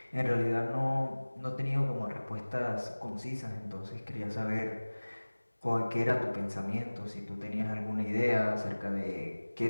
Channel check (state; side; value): inverted; both; correlation -1.00